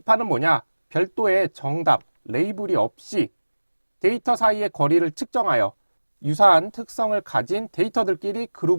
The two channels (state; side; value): inverted; both; correlation -1.00